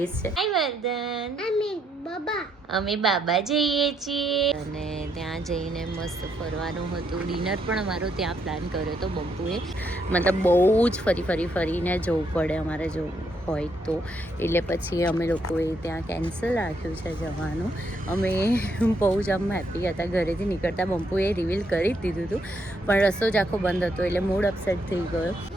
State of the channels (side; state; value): both; normal; correlation 0.75